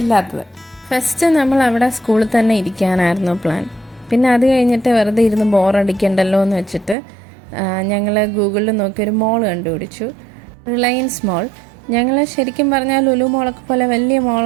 ഇല്ലാത്തത്. ഫസ്റ്റ് നമ്മൾ അവിടെ സ്കൂളിൽ തന്നെ ഇരിക്കാനായിരുന്നു പ്ലാൻ. പിന്നെ അത് കഴിഞ്ഞിട്ട് വെറുതെ ഇരുന്ന് ബോറടിക്കണ്ടല്ലോ എന്ന് വെച്ചിട്ട് ഞങ്ങൾ ഗൂഗിളിൽ നോക്കിയൊരു മോൾ കണ്ടുപിടിച്ചു, റിലയൻസ് മോൾ. ഞങ്ങൾ ശരിക്കും പറഞ്ഞാൽ ലുലു മോളൊക്കെ പോലെ വലിയ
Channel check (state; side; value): drops out; left; at 7.0 s